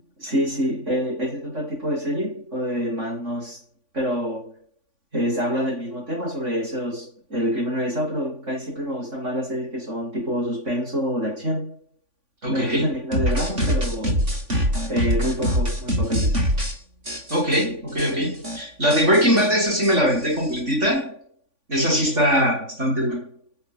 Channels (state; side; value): late; left; 3.5 ms